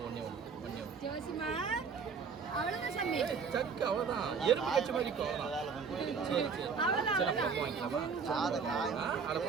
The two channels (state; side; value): quieter; left; 5.6 dB